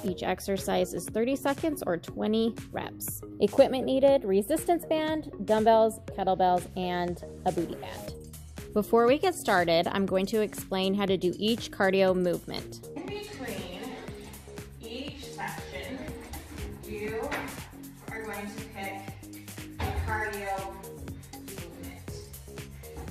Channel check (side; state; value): both; identical; correlation 1.00